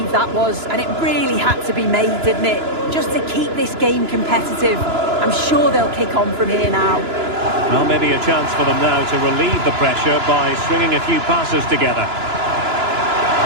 that was, and it really had to be made, didn't it? Just to keep this game competitive. I'm sure they'll kick on from here now. Well, maybe a chance for them now to relieve the pressure by stringing a few passes together.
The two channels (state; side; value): late; left; 2.9 ms